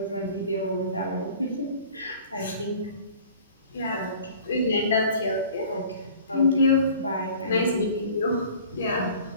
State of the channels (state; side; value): inverted; both; correlation -0.47